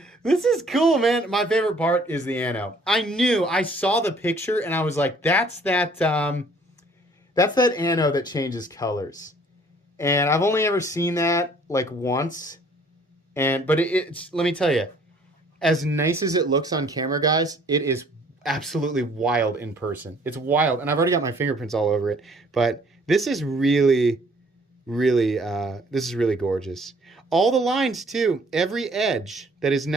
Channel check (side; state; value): both; normal; correlation 0.58